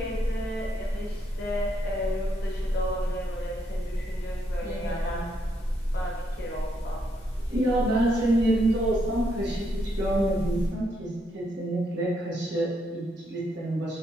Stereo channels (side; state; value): both; normal; correlation 0.77